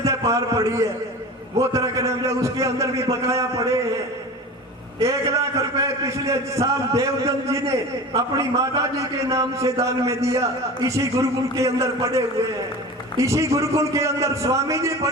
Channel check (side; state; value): both; normal; correlation 0.34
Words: से पार पड़ी है। वो तरह के नाम जो उसके अंदर भी बकाया पड़े हैं। 1 लाख रुपए पिछले साल देवदत्त जी ने अपनी माता जी के नाम से दान में दिया। इसी गुरुकुल के अंदर पड़े हुए हैं, इसी गुरुकुल के अंदर स्वामी जी